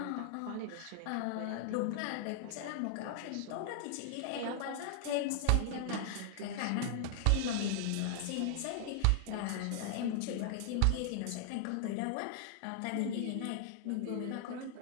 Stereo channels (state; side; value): different; both; correlation -0.01